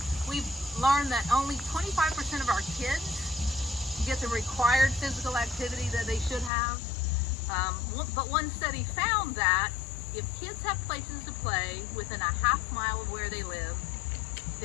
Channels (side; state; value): right; drops out; at 6.5 s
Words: learned that only 25% of our kids get the required physical activity that they should have. But one study found that if kids have places to play within a half mile of where they live,